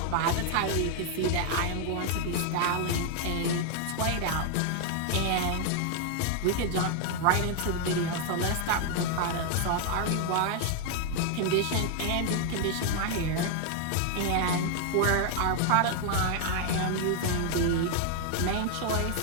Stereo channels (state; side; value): different; both; correlation 0.00